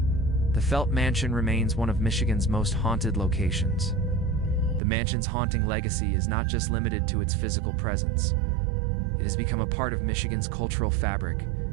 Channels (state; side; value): drops out; left; at 4.8 s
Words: the Felt Mansion remains one of Michigan's most haunted locations. The mansion's haunting legacy is not just limited to its physical presence. It has become a part of Michigan's cultural fabric,